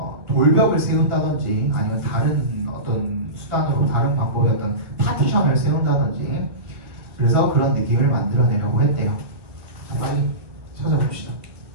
돌벽을 세운다든지 아니면 다른 어떤 수단으로 다른 방법의 어떤 파티션을 세운다든지 그래서 그런 느낌을 만들어내려고 했대요. 빨리 찾아봅시다.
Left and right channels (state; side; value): late; left; 1.9 ms